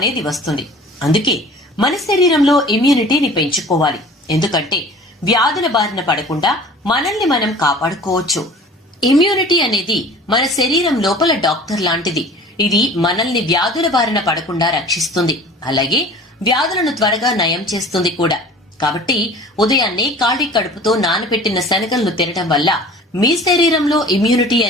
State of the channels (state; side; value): normal; both; correlation 0.44